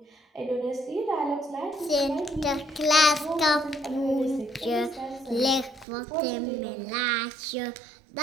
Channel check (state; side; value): drops out; left; at 5.9 s